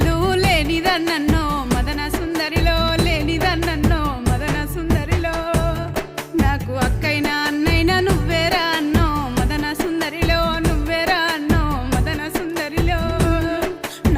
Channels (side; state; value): both; identical; correlation 1.00